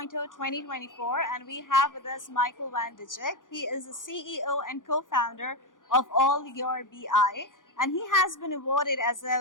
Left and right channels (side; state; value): right; late; 0.88 ms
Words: 2024, and we have with us Michael van Dijk. He is the CEO and co-founder of All Your BI, and he has been awarded as